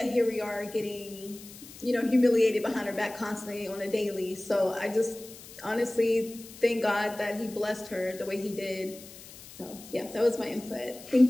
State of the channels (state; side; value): noise; left; hiss, 17 dB below the sound